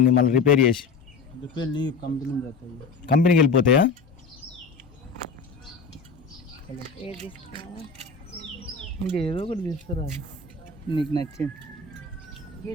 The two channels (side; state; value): right; quieter; 4.6 dB